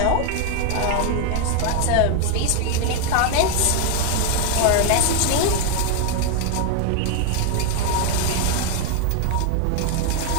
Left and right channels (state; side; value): different; both; correlation 0.01